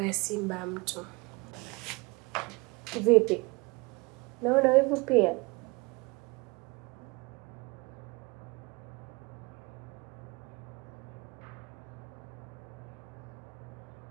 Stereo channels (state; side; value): quieter; left; 26.5 dB